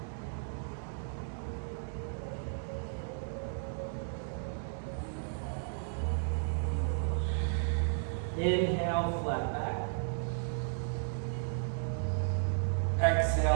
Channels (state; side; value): silent; left; digital silence